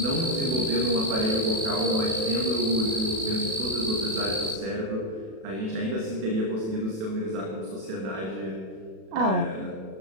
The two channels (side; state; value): left; late; 36 ms